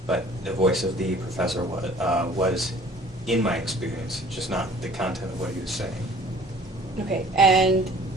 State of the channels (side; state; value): both; normal; correlation 0.51